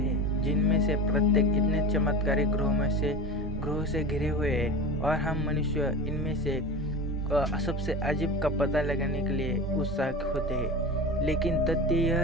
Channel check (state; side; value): normal; both; correlation 0.30